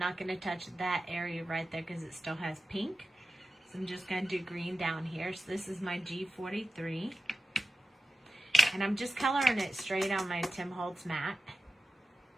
gonna touch that area right there because it still has pink. So I'm just gonna do green down here. So this is my G43. And I'm just coloring it straight on my Tim Holtz mat.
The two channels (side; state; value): both; normal; correlation 0.94